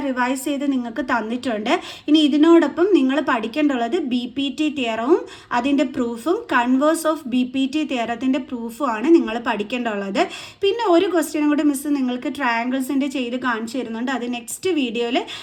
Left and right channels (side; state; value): both; identical; correlation 1.00